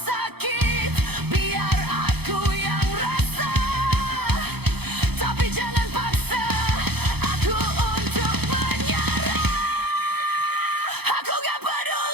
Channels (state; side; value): late; left; 0.97 ms